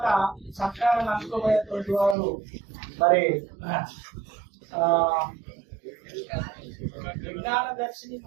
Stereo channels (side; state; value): left; drops out; at 2.1 s